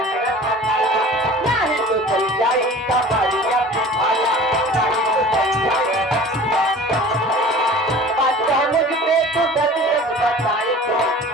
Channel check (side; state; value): both; normal; correlation 0.42